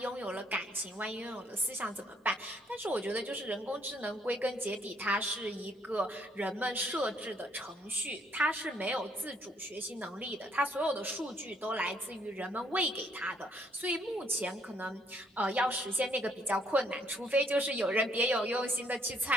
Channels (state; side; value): normal; both; correlation 0.67